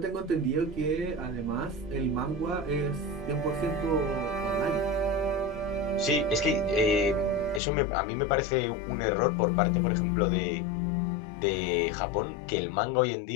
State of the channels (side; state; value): right; drops out; at 7.6 s